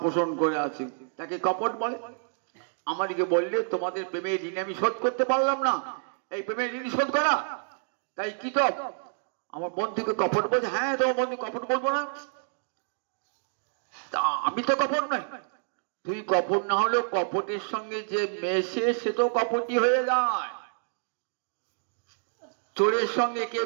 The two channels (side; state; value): left; silent; digital silence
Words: পোষণ করে আছে, তাকে কপট বলে। আমাদেরকে বললে তোমাদের প্রেমের ঋণ আমি শোধ করতে পারলাম না, এই প্রেমের ঋণ শোধ করা, তাই কি তো আমার বন্ধুকে কপট বলছে? হ্যাঁ তোমার বন্ধু কপট বলবো না? তা আমি তো কপট নয়। তুই কপট না হলেও কপটের সঙ্গে যে মেশে সে তো কপটি হয়ে যায়। চোরের সঙ্গে কে